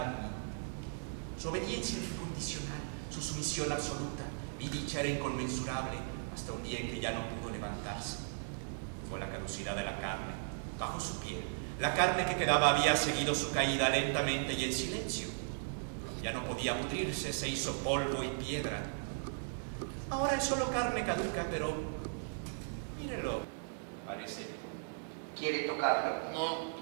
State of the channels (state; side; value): silent; left; digital silence